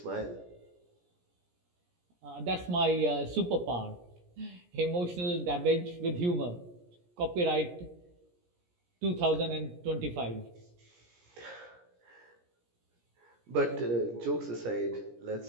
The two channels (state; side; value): late; left; 17 ms